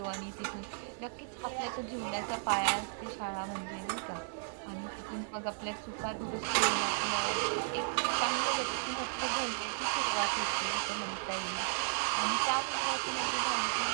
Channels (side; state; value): left; silent; 55 dB below the other